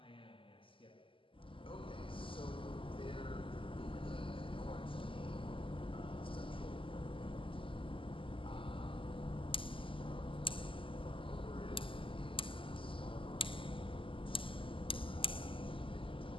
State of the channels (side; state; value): right; late; 0.25 ms